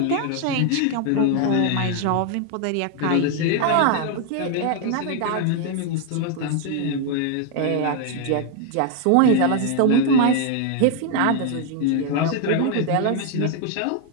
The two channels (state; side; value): different; both; correlation 0.01